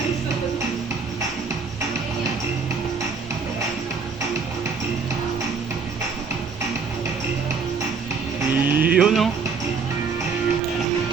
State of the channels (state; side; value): quieter; left; 5.1 dB